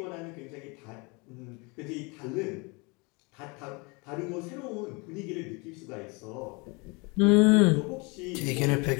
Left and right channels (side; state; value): right; quieter; 28.9 dB